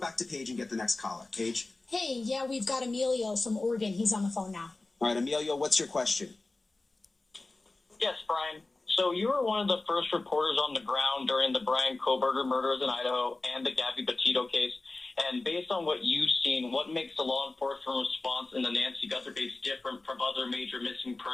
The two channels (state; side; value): quieter; right; 3.2 dB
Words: to Paige and get the next caller. Paige? Hey, yeah, we've got Emilio from Oregon. He's on the phone now. All right, Emilio, what's your question? Yes, Brian. So you were one of the first reporters on the ground during the Brian Kohberger murders in Idaho and the Gabby Petito case. And based on what you've seen, what makes the law enforcement response in the Nancy Guthrie case different from other major missing